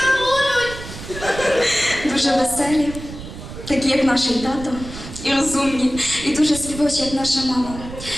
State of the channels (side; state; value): right; noise; rumble, 12 dB below the sound